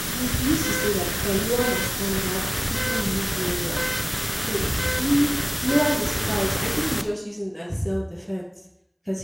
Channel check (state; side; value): identical; both; correlation 1.00